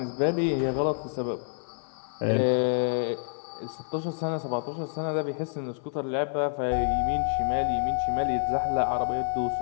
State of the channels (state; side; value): silent; right; 59 dB below the other